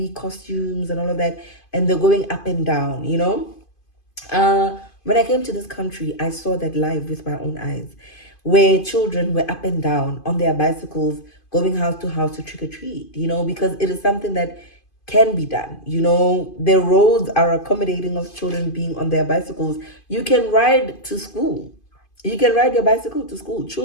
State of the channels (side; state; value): right; late; 2.5 ms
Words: costumes and all of that, and they're going up and down, when I came to this country, I saw that live with my own eyes, where children were up and down on their bicycles going house to house to trick-or-treat, because it is something that can be done. The roads are accommodating of children being on their bicycles. You can ride to school. You can ride your bicycle to school.